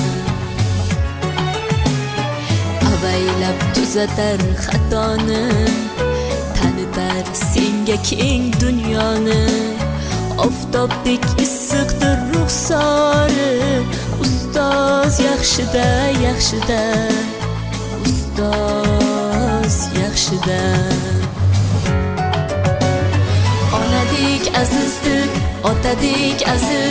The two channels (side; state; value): both; identical; correlation 1.00